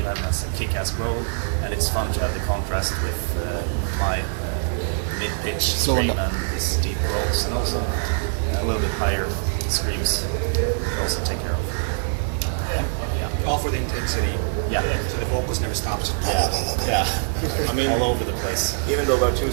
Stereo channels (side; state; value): left; silent; digital silence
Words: has a kick-ass role, and it's fun to have the contrast with my mid-pitch scream and his deep rolls, and also a little bit higher screams we also take care of. All for the intensity. Yeah. So the vocals never stops. Yeah. I mean, all over the place. Even though we're two